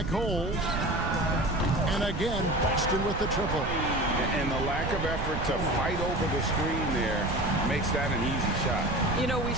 Hole. And again, Boston with the triple. And the lack of effort to fight over the screen there makes that an easy shot. You know, we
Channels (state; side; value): noise; right; rumble, 5 dB below the sound